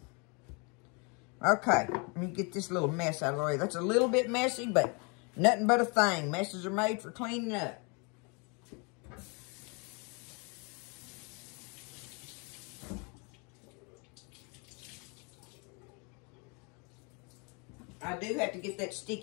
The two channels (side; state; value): right; quieter; 32.4 dB